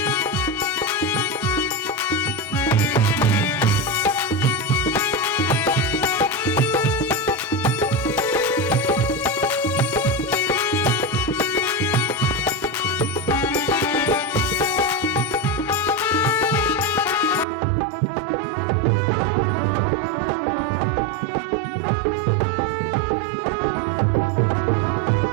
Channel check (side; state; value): left; drops out; at 17.4 s